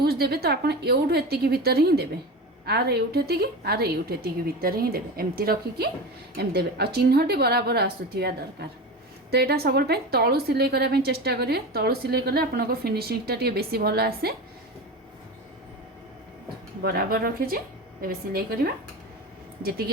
देबे तो आपण एउठु एतिकी भितर ही देबे आर एउठेती आर एउठेती भितर ही देबे एमती रखिकी एम देबे आ चिन्हटी बराबर आसुथिया दरकार तो यहाँ सब तलू सिलाई करने चेष्टा करेंगे तलू सिलाई कले आपन फिनिशिंगटा टी बेसी भल आसे बराबर रखीचे ए सिलाई करवा जी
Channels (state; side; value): normal; both; correlation 0.26